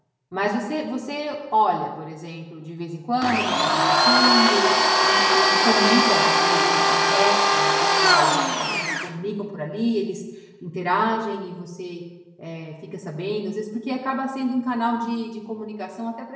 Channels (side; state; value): both; identical; correlation 1.00